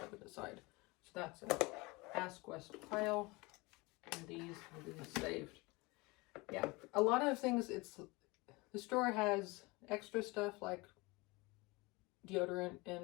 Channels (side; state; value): right; quieter; 24.4 dB